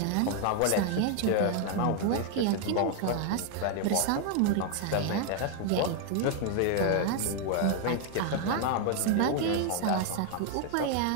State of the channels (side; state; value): both; different; correlation 0.00